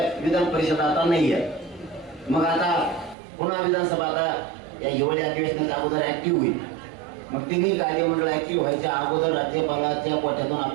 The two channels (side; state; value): left; drops out; at 3.2 s